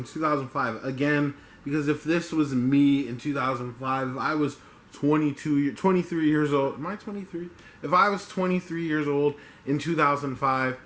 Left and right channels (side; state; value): both; identical; correlation 1.00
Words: 2005. Again, because if this was me in 2005, if I was 23 years old, am I 23? If I was 23 years old in 2005,